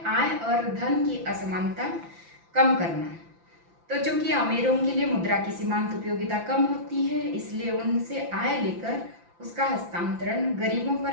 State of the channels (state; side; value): late; left; 5.9 ms